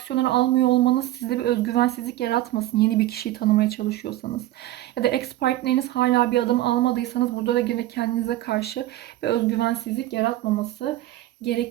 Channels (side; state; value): left; quieter; 15.2 dB